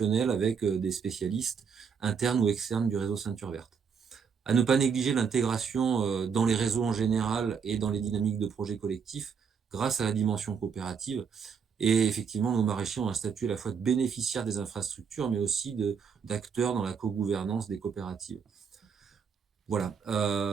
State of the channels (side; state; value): left; quieter; 6.3 dB